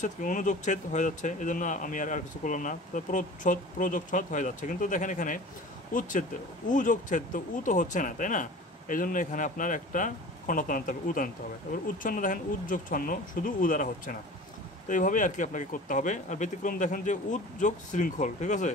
কি অনুযোগচ্ছেদ হয়ে যাচ্ছে, এই জন্য আমি আর কিছু করলাম না। তো প্রচ্ছদ, প্রযোগচ্ছদ হয়ে যাচ্ছে। কিন্তু দেখেন এখানে উচ্ছেদ, উ যোগচ্ছেদ, তো উ তো হচ্ছে না, তাই না, এই জন্য এখানে আপনার একটা খণ্ডত্ব আনতে হবে, উদ আনতে হবে। তারপর উচ্ছন্ন দেখেন উদ্যোগ ছন্ন, শুধু উ দ্বারা হচ্ছে না। তো এইভাবেই আর কি আপনাকে করতে হবে। আর ব্যতিক্রম দেখেন যে উদ্যোগ শৃঙ্খল, ঠিক আছে,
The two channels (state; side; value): normal; both; correlation 0.40